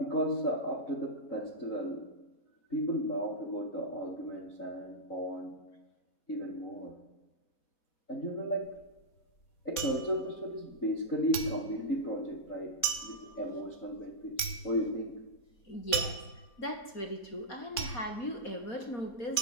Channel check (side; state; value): right; late; 3.7 ms